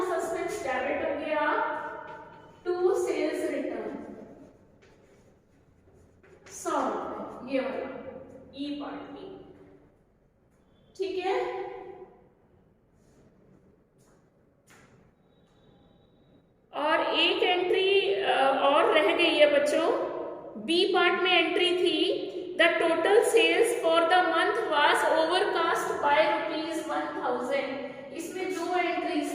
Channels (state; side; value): identical; both; correlation 1.00